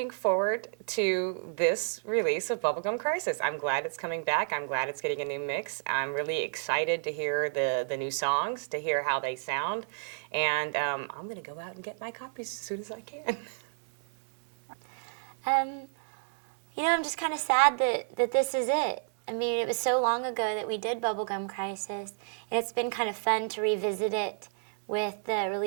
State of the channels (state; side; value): silent; left; digital silence